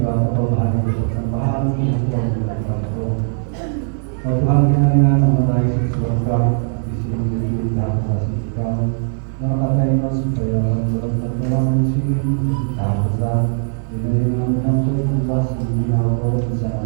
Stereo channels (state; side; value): silent; left; 56 dB below the other